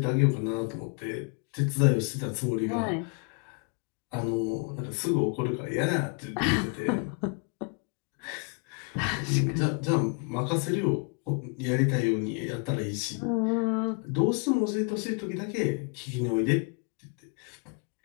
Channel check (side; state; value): right; quieter; 35.6 dB